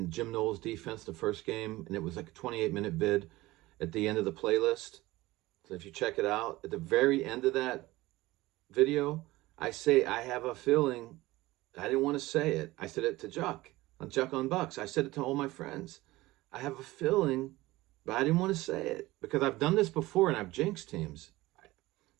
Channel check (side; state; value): left; quieter; 18.9 dB